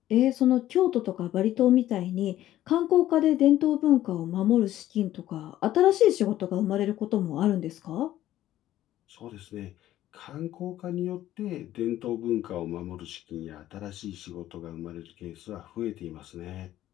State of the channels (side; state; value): right; quieter; 13.5 dB